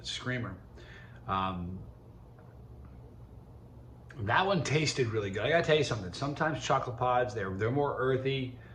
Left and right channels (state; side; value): identical; both; correlation 1.00